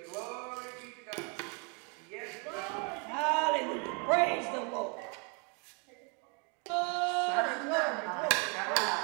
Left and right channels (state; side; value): quieter; left; 34.8 dB